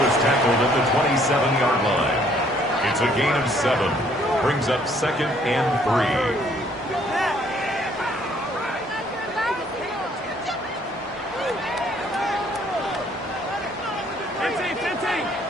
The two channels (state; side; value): normal; both; correlation 0.63